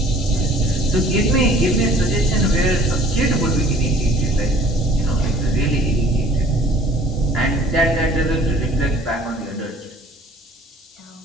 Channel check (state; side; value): normal; both; correlation 0.52